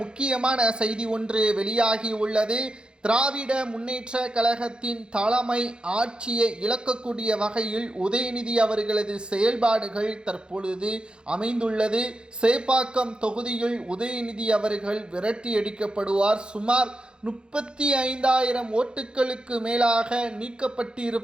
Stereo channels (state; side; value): late; left; 0.051 ms